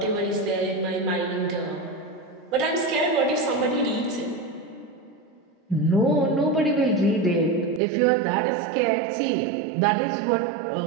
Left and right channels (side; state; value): left; drops out; at 7.8 s